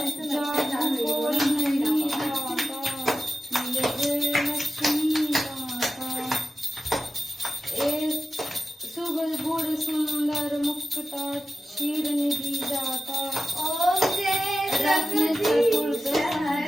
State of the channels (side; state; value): both; normal; correlation 0.92